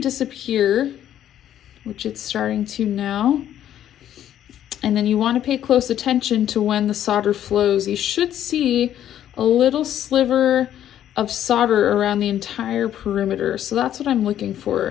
which it's starting to now. And then you want to pay close attention to when the solder flows. You should see a little sliver of solder around the entire perimeter. So that's what I'm looking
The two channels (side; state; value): right; quieter; 11.1 dB